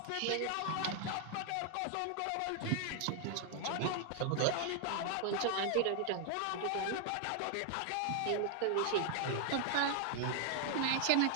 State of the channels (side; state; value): both; different; correlation 0.00